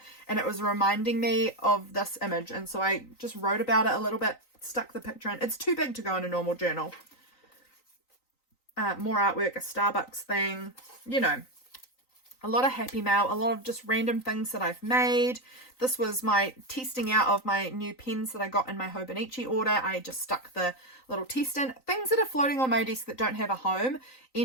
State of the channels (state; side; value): late; right; 3.9 ms